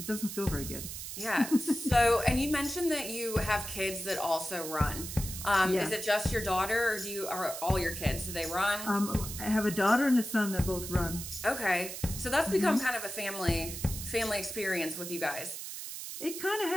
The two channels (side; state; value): right; noise; hiss, 8 dB below the sound